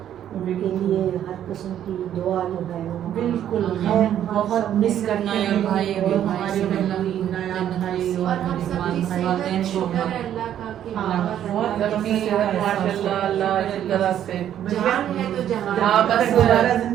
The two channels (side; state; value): left; quieter; 10.6 dB